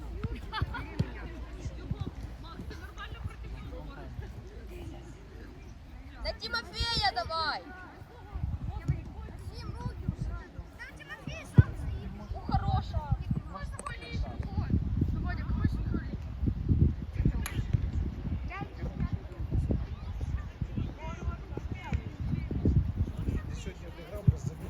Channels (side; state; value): both; identical; correlation 1.00